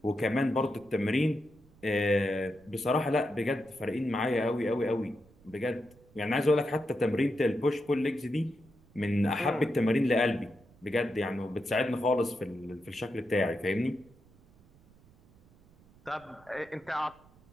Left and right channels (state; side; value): noise; right; rumble, 28 dB below the sound